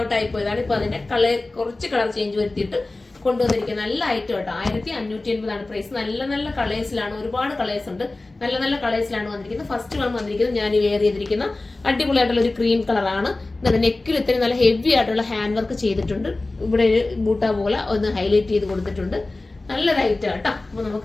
ഔട്ട് ആയി പോയതാണ്. ഇപ്പൊ അതിന്റെ കുറച്ച് കളർ ചേഞ്ച് വരുത്തിയിട്ട് കൊണ്ടുവന്നിരിക്കുന്നത്. നല്ല ഐറ്റം കേട്ടോ. 1580 പ്രൈസ്. നല്ല നല്ല കളേഴ്സിലാണ്, ഒരുപാട് കളേഴ്സ് ഉണ്ട്. നല്ല നല്ല കളേഴ്സിലാണ് വന്നിരിക്കുന്നത്. ഫസ്റ്റ് വന്നിരിക്കുന്നത് ഞാൻ വെയർ ചെയ്തിരിക്കുന്ന അടിപൊളിയായിട്ടുള്ള ഒരു ക്രീം കളറാണ്. നെക്കിൽ ഇത്രയും നല്ല ഹെവി ആയിട്ടുള്ള ഹാൻഡ് വർക്ക് ചെയ്തിട്ടുണ്ട്. ഇവിടെ ഒരു ബൂട്ട പോലെ ഒന്ന് ഹൈലൈറ്റ് ചെയ്ത് കൊടുത്തിട്ടുണ്ട്. നല്ലൊരു ഐറ്റം കേട്ടോ. അപ്പൊ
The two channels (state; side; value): quieter; right; 3.1 dB